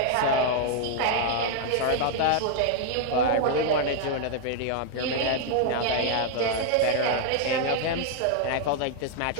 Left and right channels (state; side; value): different; both; correlation 0.00